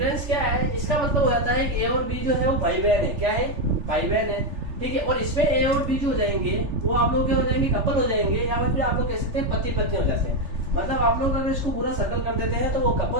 क्या है? इसका मतलब हो जाता है कि ए और बी जो है वो भाई बहन है। क्या है? भाई बहन है। ठीक है, और इसमें ए और बी जो हो जाएंगे वो आप लोग क्या हो जाएंगे? कपल हो जाएंगे, या फिर आप लोग कह सकते हैं पति पत्नी हो जाते हैं। मतलब आप लोग अगर इसको पूरा सर्कल कर देते हैं तो वो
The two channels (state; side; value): late; left; 3.4 ms